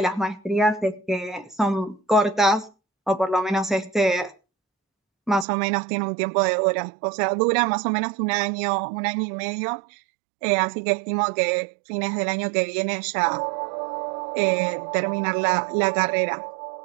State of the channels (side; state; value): left; drops out; at 5.5 s